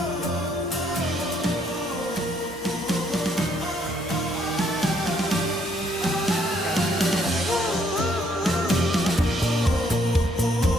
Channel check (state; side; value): normal; both; correlation 0.69